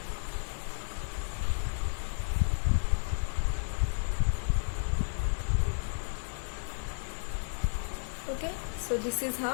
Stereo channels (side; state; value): right; silent; digital silence